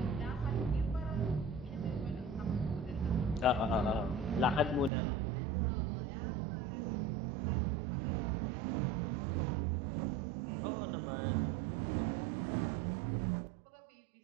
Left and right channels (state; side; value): drops out; left; at 4.9 s